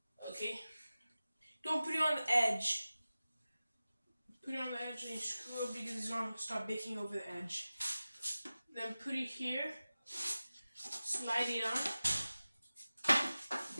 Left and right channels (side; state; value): both; inverted; correlation -0.96